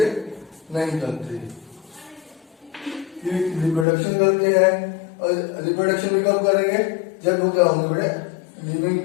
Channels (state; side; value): drops out; right; at 3.9 s